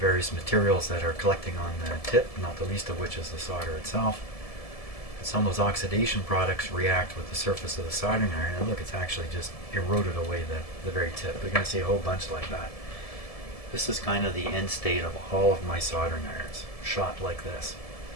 materials that are collecting on the tip, not the least of which is the solder itself. And some of those oxidation products react with the surface of the soldering iron, and look, it's actually just eroded away the very tip. We're going to see a whole bunch like that. This is kind of the end state of all of my soldering irons, shot like this.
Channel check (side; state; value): right; late; 1.7 ms